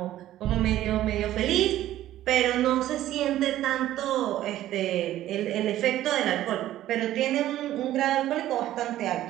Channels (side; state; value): left; quieter; 13.6 dB